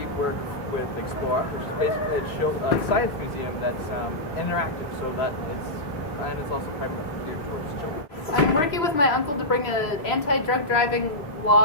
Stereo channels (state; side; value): late; right; 3.0 ms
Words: work with Explore, which is basically a science museum that's interactive, so that it's also primarily geared towards children. I'm working with my uncle to bring an anti-drug driving